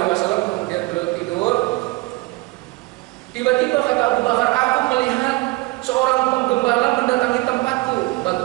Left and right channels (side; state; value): left; quieter; 23.0 dB